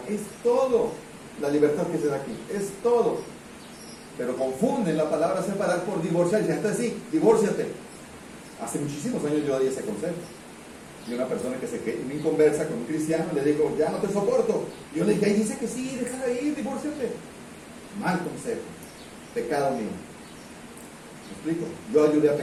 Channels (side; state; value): both; identical; correlation 1.00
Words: Es todo. La libertad que se da aquí, es todo. Pero confunden la palabra separar por divorciar. Y dicen, entonces sí, divórciate. Hace muchísimos años yo di ese consejo. Y una persona que se me conversa con un cristiano le digo, ya no te soporto. Y yo le dije, ahí dice que sí, déjala ir, divórciate. Mal consejo. Pecado mío. ¿Me explico? Yo ayudé a